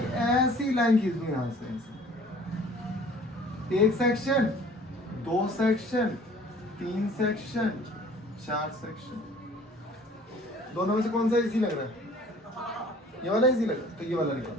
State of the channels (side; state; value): both; normal; correlation 0.51